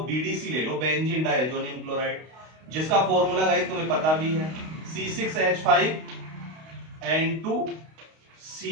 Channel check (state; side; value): late; left; 32 ms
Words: BDC ले लो, बेंजीन डाइएजोनियम क्लोराइड, जिसका फॉर्मूला गाइस तुम्हें पता भी है,